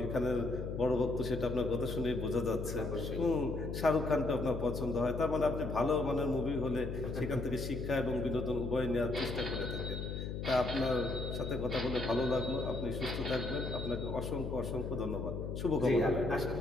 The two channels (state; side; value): noise; left; hum, 5 dB below the sound